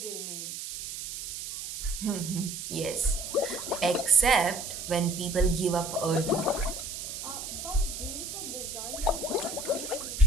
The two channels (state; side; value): noise; right; hiss, 7 dB below the sound